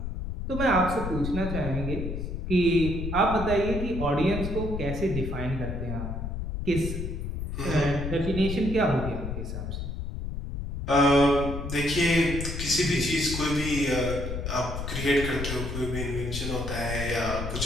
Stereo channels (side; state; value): left; noise; rumble, 5 dB below the sound